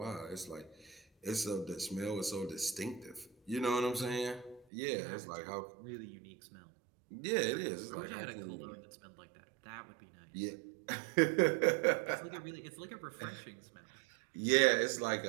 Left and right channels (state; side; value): drops out; left; at 4.7 s